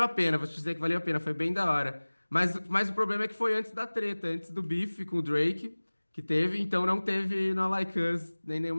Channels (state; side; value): inverted; both; correlation -1.00